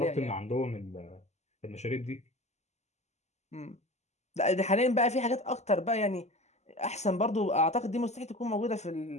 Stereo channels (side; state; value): right; late; 0.33 ms